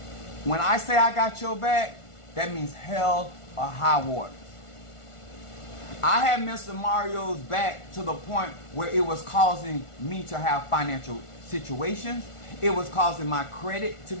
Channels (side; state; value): right; late; 1.4 ms